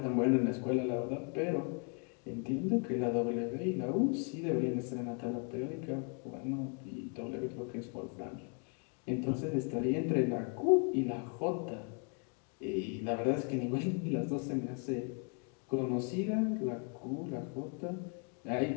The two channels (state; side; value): quieter; right; 39.3 dB